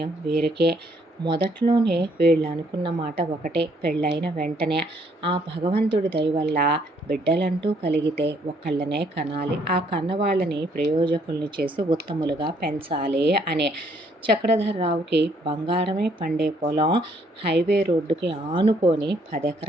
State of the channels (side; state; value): both; normal; correlation 0.67